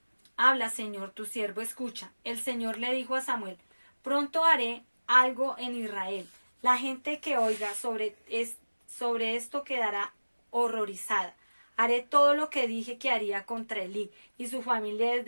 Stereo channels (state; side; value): inverted; both; correlation -1.00